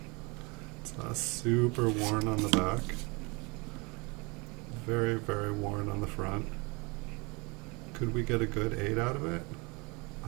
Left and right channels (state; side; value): quieter; left; 28.1 dB